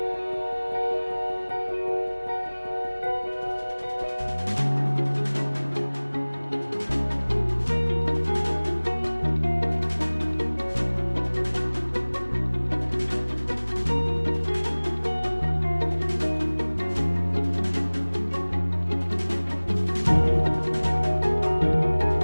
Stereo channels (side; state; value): both; inverted; correlation -1.00